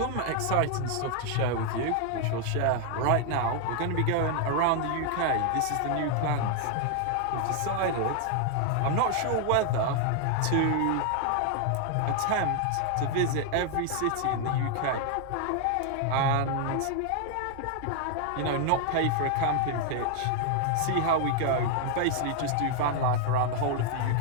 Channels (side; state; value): both; different; correlation 0.00